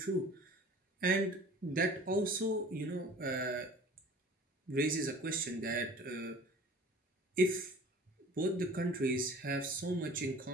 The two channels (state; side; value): normal; both; correlation 0.46